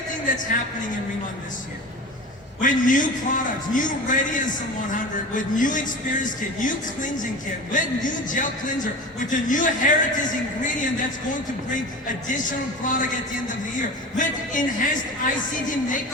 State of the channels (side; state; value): both; normal; correlation 0.32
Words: that's happening in Riemann this year, with new products, new Radiance 100, with new Experience Kit, new cleansing kit, with new gel cleanser, with the new heritage ingredient that's going to bring additional product at the end of the year, with enhanced ICD